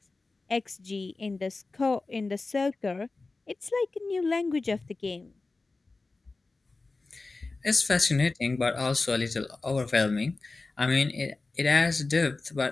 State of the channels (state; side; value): quieter; right; 3.5 dB